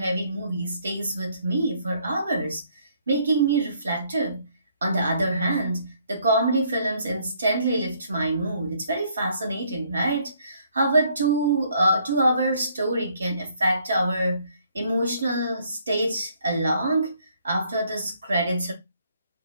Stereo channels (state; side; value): inverted; both; correlation -0.66